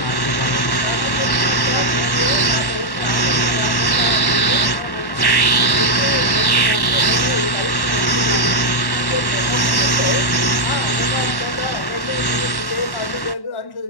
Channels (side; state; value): right; late; 1.1 ms